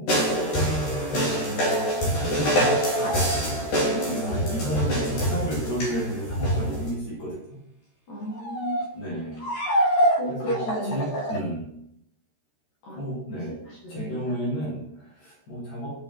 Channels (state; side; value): late; right; 13 ms